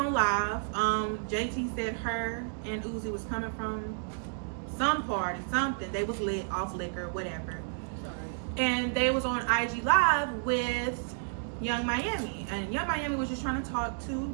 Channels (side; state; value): left; silent; digital silence